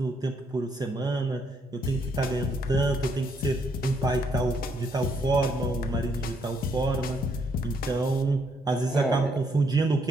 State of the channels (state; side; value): normal; both; correlation 0.73